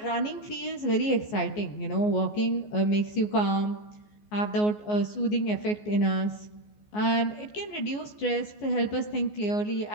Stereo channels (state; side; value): late; right; 14 ms